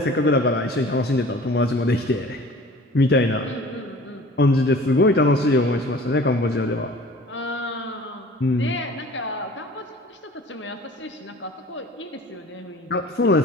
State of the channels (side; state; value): both; normal; correlation 0.45